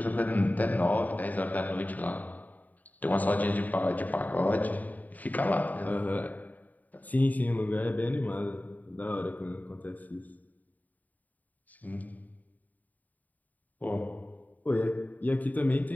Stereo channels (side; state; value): right; late; 0.078 ms